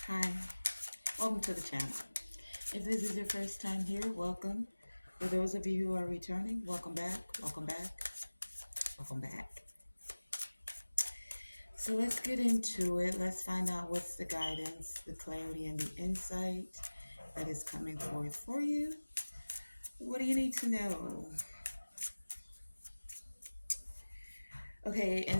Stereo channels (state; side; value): inverted; both; correlation -1.00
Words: Hi, welcome to the channel. If this is your first time here, welcome. For those of you who are returning, welcome back, welcome back, welcome back. So let's get into it. Let's find out what's the guidance, the clarity, and the insight that is coming forth for you. What do you need to know? Okay,